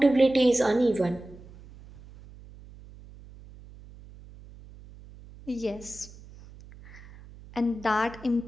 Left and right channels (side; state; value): right; noise; hum, 20 dB below the sound